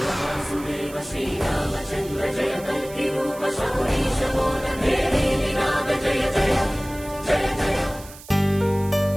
వాసుదేవ శ్రీరామచంద్ర జయ కల్కి రూప శౌరీశ మోద దేవీ వినాద జయ జయ జయ జయ.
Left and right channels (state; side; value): noise; right; hiss, 18 dB below the sound